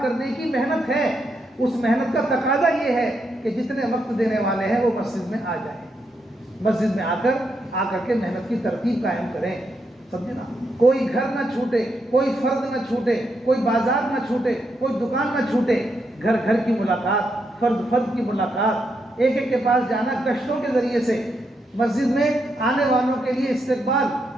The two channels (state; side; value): normal; both; correlation 0.81